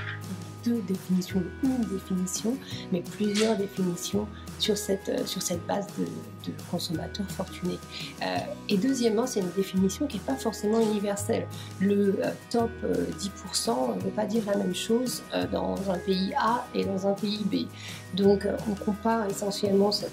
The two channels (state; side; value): identical; both; correlation 1.00